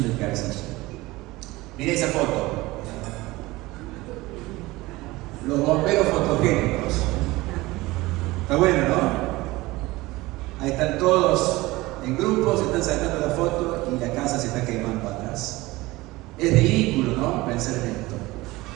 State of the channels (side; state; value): left; quieter; 20.1 dB